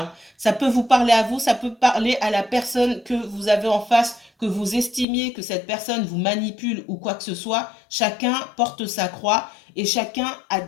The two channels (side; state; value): right; drops out; at 5.1 s